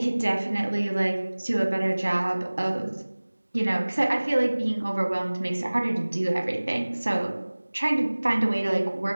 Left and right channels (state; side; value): inverted; both; correlation -1.00